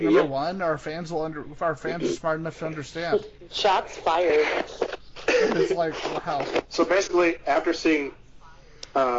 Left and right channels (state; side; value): identical; both; correlation 1.00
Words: number one. Our fans are smart enough to understand. Shots fired. It's like, wow. So basically, after seeing